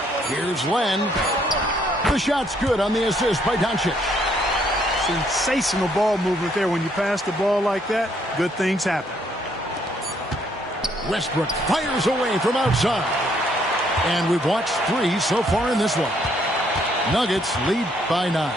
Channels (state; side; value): normal; both; correlation 0.69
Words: Here's Len. The shot's good on the assist by Doncic. Sensational ball movement there. When you pass the ball like that, good things happen. Westbrook fires away from outside. And we've watched 3 so far in this one. Nuggets lead by 9.